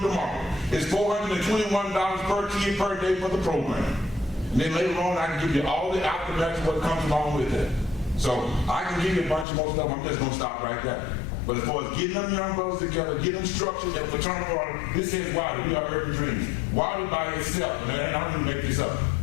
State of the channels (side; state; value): right; drops out; at 9.5 s